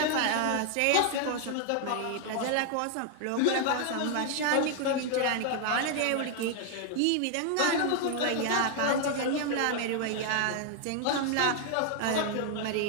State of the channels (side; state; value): both; different; correlation 0.00